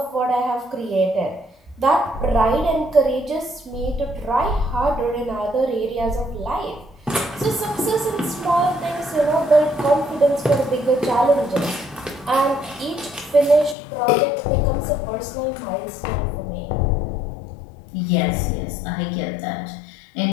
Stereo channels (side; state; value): right; drops out; at 13.8 s